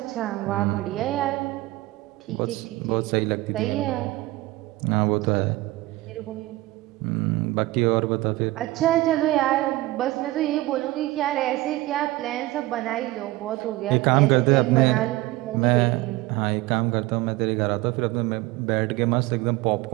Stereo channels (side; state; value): left; quieter; 18.9 dB